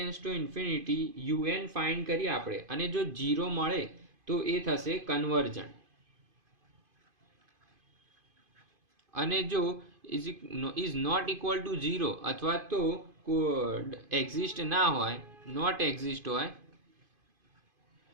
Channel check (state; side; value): late; left; 2.5 ms